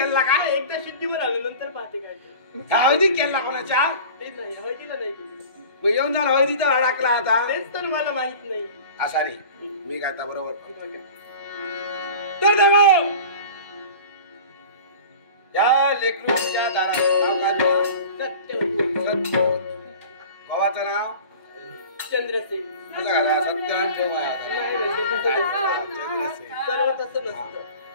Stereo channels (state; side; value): inverted; both; correlation -0.39